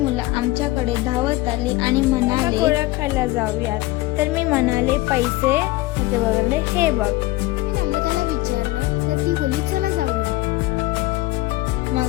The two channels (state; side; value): quieter; right; 19.0 dB